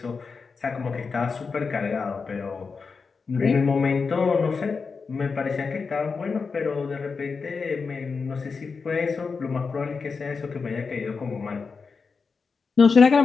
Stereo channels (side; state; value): right; quieter; 4.9 dB